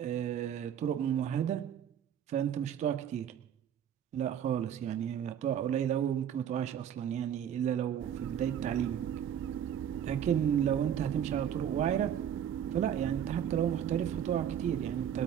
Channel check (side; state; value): left; quieter; 9.3 dB